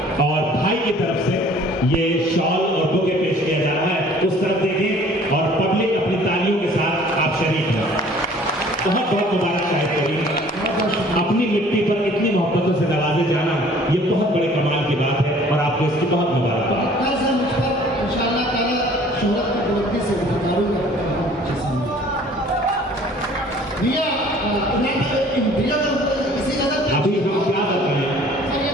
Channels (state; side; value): normal; both; correlation 0.53